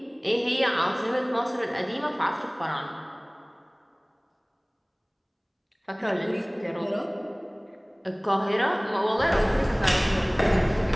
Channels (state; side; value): identical; both; correlation 1.00